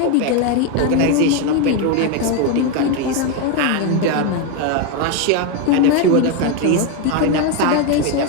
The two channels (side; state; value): both; different; correlation 0.02